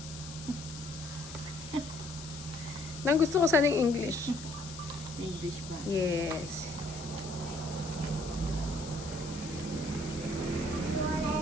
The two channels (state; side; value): noise; left; hiss, 13 dB below the sound